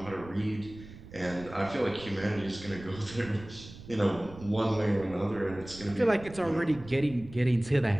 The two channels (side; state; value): right; noise; rumble, 16 dB below the sound